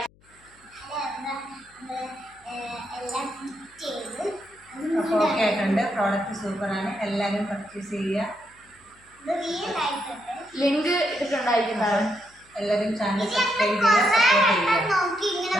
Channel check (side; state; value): left; noise; hum, 30 dB below the sound